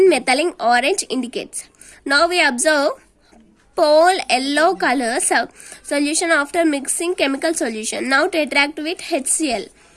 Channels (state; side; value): identical; both; correlation 1.00